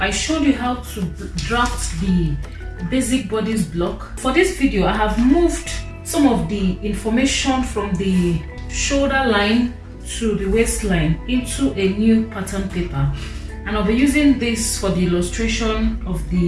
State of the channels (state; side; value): identical; both; correlation 1.00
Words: showed you how to draft the basic bodice block. For this video, I have moved some of the information from the shoulder line to the waistline into a new pattern paper, and I'll be using this for the illustration of